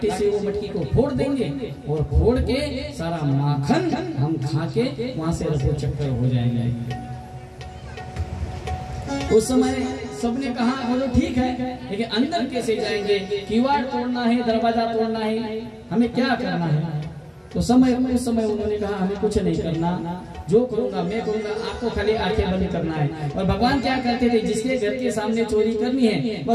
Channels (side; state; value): both; identical; correlation 1.00